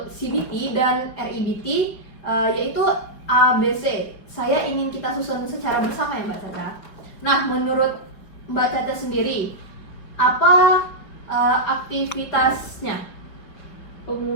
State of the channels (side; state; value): right; late; 5.4 ms